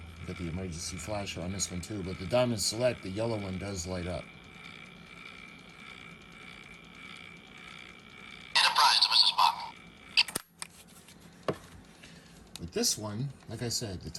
Got the emergency flasher on this one too, but the Diamond Select, the yellow one, does light up. Enterprise to Mr. Spock. With this one, like I said, the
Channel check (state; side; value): identical; both; correlation 1.00